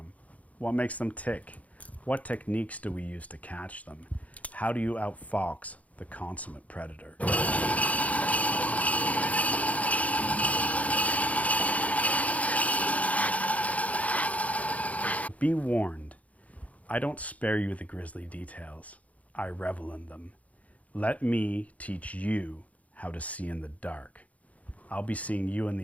What makes them tick? What techniques do we use to catch them? How do you outfox the consummate predator? Be warned, I don't spare you the grisly details. I revel in them. Let me teach you how to see in the dark. I'll be seeing you in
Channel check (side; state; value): right; late; 0.069 ms